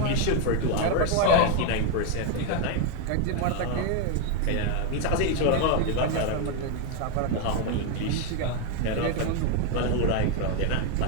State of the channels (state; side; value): different; both; correlation 0.01